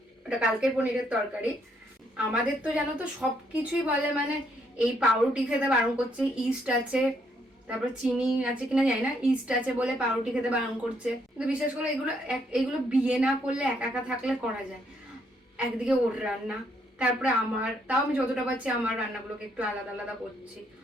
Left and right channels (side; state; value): both; normal; correlation 0.72